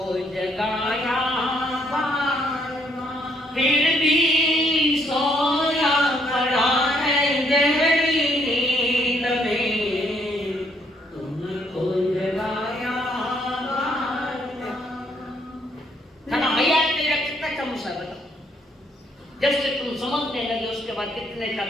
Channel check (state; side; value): normal; both; correlation 0.69